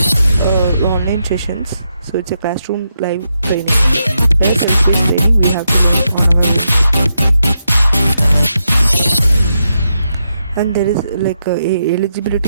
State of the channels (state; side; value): inverted; both; correlation -0.84